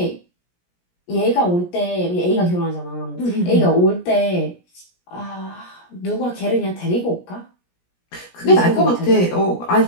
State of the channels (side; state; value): right; late; 17 ms